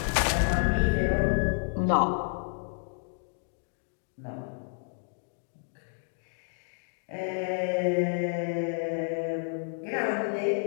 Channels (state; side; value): silent; right; digital silence